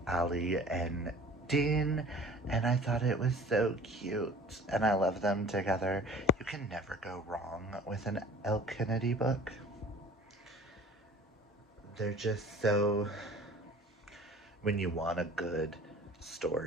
Allie and Dean, and I thought it was so cute, and I love them together. You can never go wrong with an Elle Kennedy book. They're just so... When you want a good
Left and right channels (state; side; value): normal; both; correlation 0.45